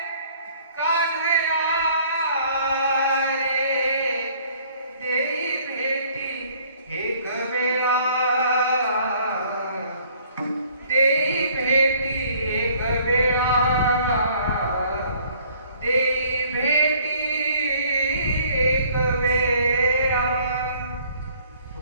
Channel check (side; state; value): both; inverted; correlation -0.58